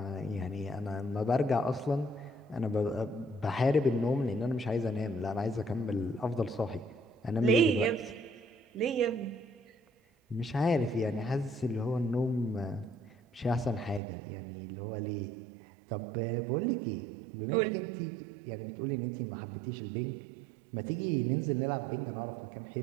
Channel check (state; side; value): drops out; left; at 14.0 s